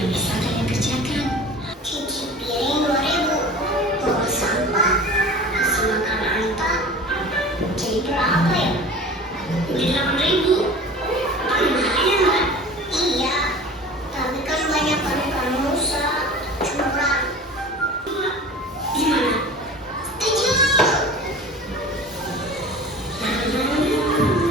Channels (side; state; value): both; normal; correlation 0.39